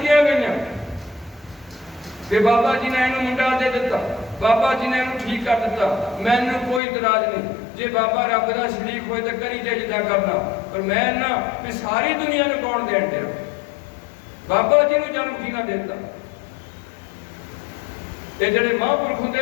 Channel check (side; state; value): right; drops out; at 6.8 s